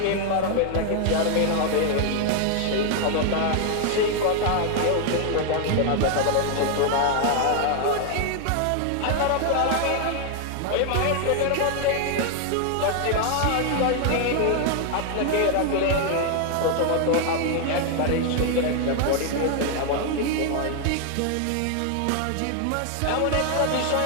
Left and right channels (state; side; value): different; both; correlation 0.00